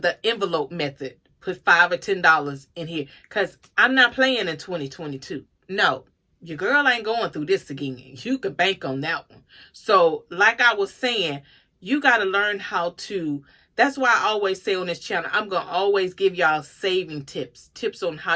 envelope method. Put $5 or $10 in here, because I'm not playing in 2022. No, your girl ain't going through this again. You can bank on that one. So like I was saying, you got to learn how to. That's why I always say on this channel, I'm going to always give y'all saving tips on how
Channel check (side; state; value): both; identical; correlation 1.00